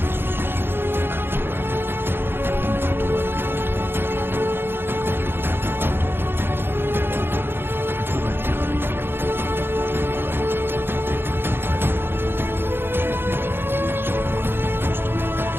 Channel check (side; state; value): left; late; 0.10 ms